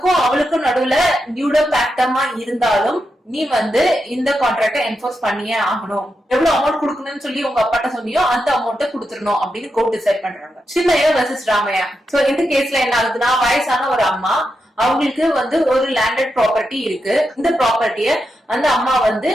அவளுக்கும் நடுவுல நியூடோ பேக்டமா இருந்தாலும் நீ வந்து இந்த கான்ட்ராக்ட என்ஃபோர்ஸ் பண்ணியே ஆகணும். எவ்வளவு அமௌண்ட் கொடுக்கணும்னு சொல்லி உங்க அப்பாட்ட சொன்னியோ அந்த அமௌண்ட்டை கொடுத்துடணும் அப்படின்னு கோர்ட் டிசைட் பண்றாங்க. சின்னையா வெர்சஸ் ராமையா. சோ இந்த கேஸ்ல என்ன ஆகுதுன்னா, வயசான ஒரு அம்மா, அவங்களுக்கு வந்து ஒரு லேண்டட் ப்ராப்பர்ட்டி இருக்கு. இந்த ப்ராப்பர்ட்டிய அந்த அம்மா வந்து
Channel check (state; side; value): normal; both; correlation 0.86